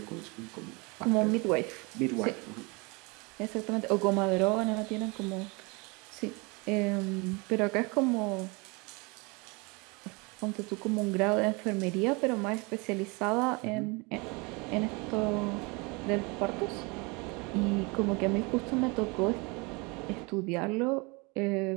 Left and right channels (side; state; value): left; quieter; 28.4 dB